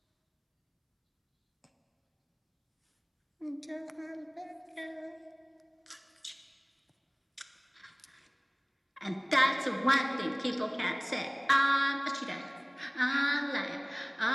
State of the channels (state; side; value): identical; both; correlation 1.00